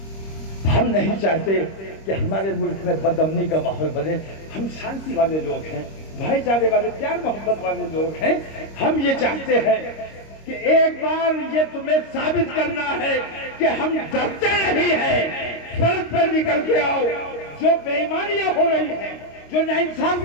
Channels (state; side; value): late; right; 26 ms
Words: ہم نہیں چاہتے کہ ہمارے ملک میں بدامنی کا ماحول بنے، ہم شانتی والے لوگ ہیں، بھائی چارے والے، پیار محبت والے لوگ ہیں، ہم یہ چاہتے ہیں کہ ایک بار یہ تمہیں ثابت کرنا ہے کہ ہم ڈرتے نہیں ہیں، سڑک پر نکل کے آؤ۔ جو بے ایمانیاں ہو رہی ہیں، جو